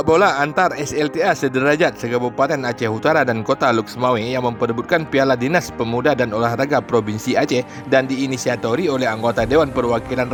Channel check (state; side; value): identical; both; correlation 1.00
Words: bola antar SLTA sederajat se-Kabupaten Aceh Utara dan Kota Luk Semawe yang memperebutkan Piala Dinas Pemuda dan Olahraga Provinsi Aceh dan diinisiatori oleh anggota Dewan Perwakilan